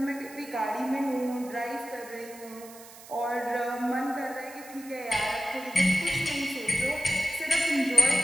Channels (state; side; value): noise; right; hiss, 18 dB below the sound